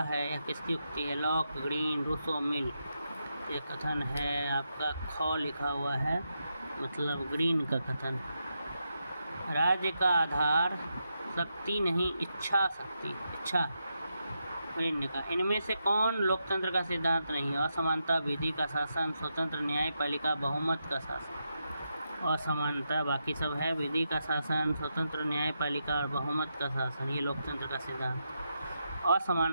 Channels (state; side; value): inverted; both; correlation -0.85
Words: है, यह किसकी उक्ति है? लॉक, ग्रीन, रूसो, मिल। ये कथन है आपका ख लिखा हुआ है, मतलब ग्रीन का कथन। राज्य का आधार शक्ति नहीं इच्छा शक्ति, इच्छा ग्रीन ने कहा। इनमें से कौन लोकतंत्र का सिद्धांत नहीं है? असमानता, विधि का शासन, स्वतंत्र न्यायपालिका, बहुमत का शासन। असमानता बाकी सब है, विधि का शासन, स्वतंत्र न्यायपालिका और बहुमत का शासन, ये लोकतंत्र का सिद्धांत।